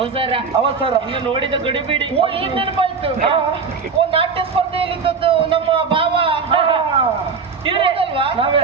ಅವಸರ ನೋಡಿದ ಗಡಿಬಿಡಿ ಓ ಈಗ ನೆನಪಾಯ್ತು ನಾಟ್ಯ ಸ್ಪರ್ಧೆಯಲ್ಲಿ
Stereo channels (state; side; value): quieter; left; 5.3 dB